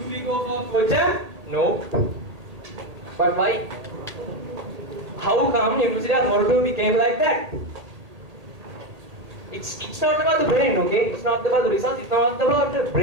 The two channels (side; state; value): left; late; 1.8 ms